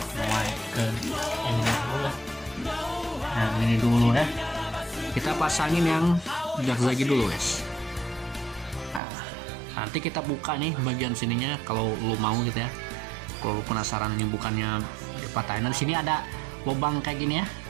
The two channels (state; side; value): drops out; left; at 9.0 s